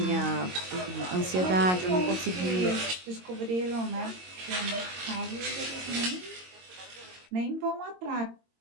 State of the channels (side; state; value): left; late; 22 ms